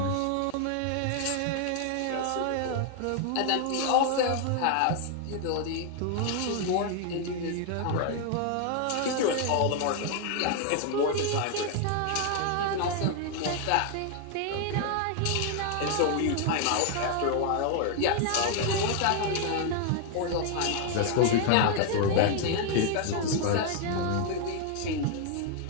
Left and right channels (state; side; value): different; both; correlation 0.00